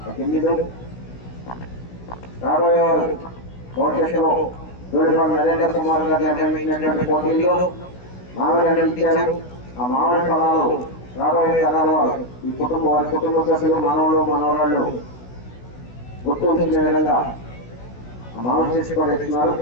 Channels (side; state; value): right; late; 16 ms